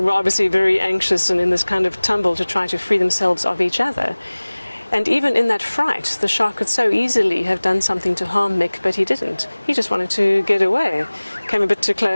were obviously very anxious and in this kind of tumble to try to free themselves of each other. And even in that fright, the shark could so easily have done something to harm Mick, but he didn't. He just wanted to get away. Came a bit too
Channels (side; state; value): both; inverted; correlation -1.00